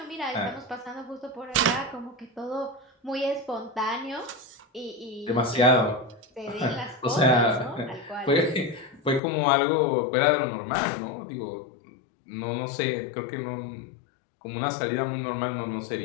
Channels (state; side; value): drops out; right; at 9.2 s